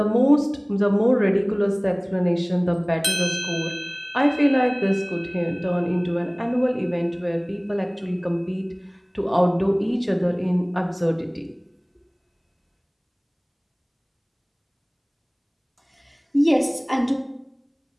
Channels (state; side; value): identical; both; correlation 1.00